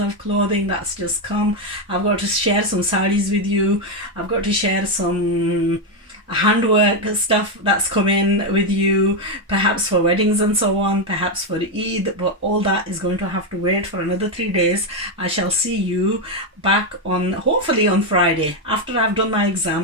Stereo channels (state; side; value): normal; both; correlation 0.06